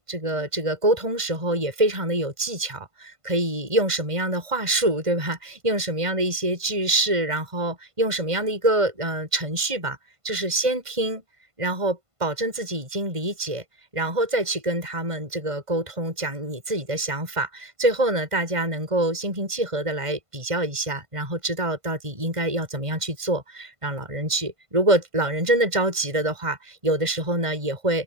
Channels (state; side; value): late; left; 1.5 ms